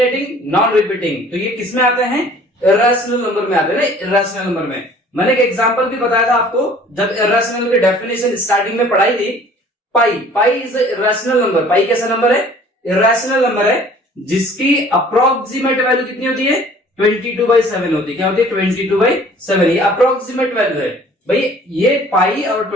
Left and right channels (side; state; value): both; normal; correlation 0.51